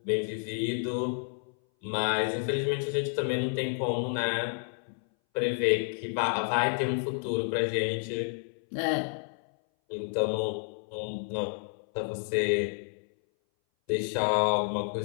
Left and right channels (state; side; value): silent; right; 58 dB below the other